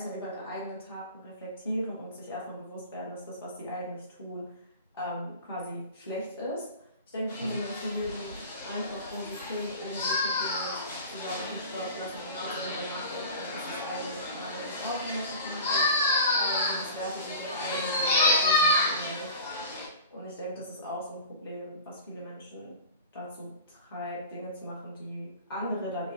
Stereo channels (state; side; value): inverted; both; correlation -0.38